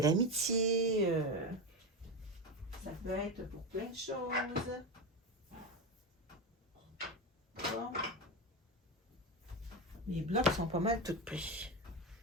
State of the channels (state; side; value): normal; both; correlation 0.16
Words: amitié. Ça peut être pour plein de choses. Bon. Les blocs sont pas mal tout pris.